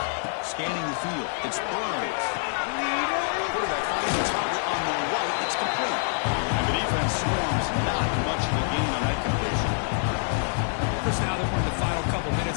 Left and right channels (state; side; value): silent; right; digital silence